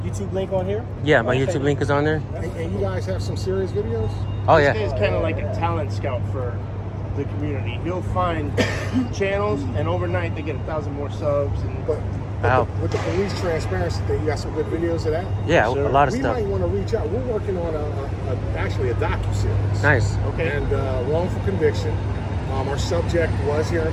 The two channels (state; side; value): identical; both; correlation 1.00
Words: YouTube link on here? Yeah, my YouTube link is on there. And you guys have some serious videos? Oh This yeah. guy's kind of like a talent scout for the community. He'll find channels, and overnight they get 1,000 more subs. And But Wow. with the police transparency thing, you got some good videos of that? Yeah, Sure. a lot of We stuff. might want to reach out. We're working on actually a docu-series. Nice. okay. And wrongful conviction. Our subject was here in